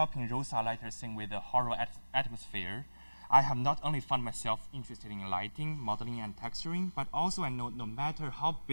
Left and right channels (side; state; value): both; inverted; correlation -1.00